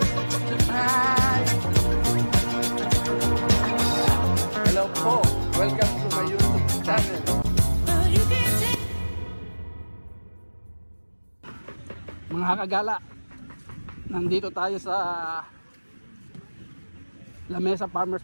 Hi! Hello po! Welcome to my YouTube channel. Mga kagala, nandito tayo sa Lamesa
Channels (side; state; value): both; inverted; correlation -1.00